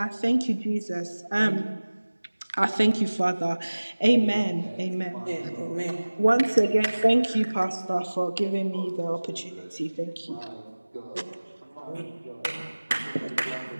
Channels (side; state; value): both; inverted; correlation -1.00